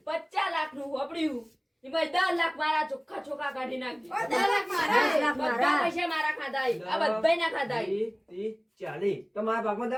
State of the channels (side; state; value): both; identical; correlation 1.00